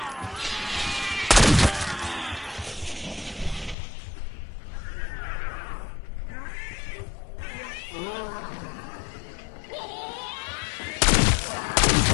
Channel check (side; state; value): right; drops out; at 3.8 s